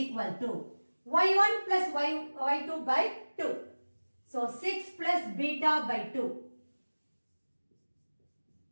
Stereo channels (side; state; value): both; inverted; correlation -1.00